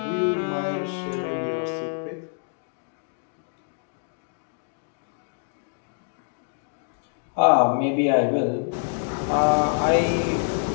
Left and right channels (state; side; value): silent; right; digital silence